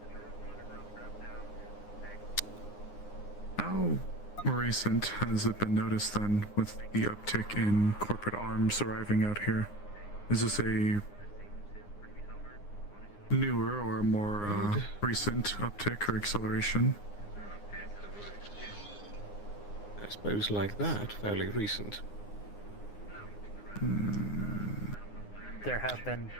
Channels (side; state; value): right; late; 9.7 ms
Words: How recent has it been noticed then with the uptick in corporate arms arriving out here? Is this a newer or a more recent uptick or acceleration? I suppose like that, fairly recent. There have been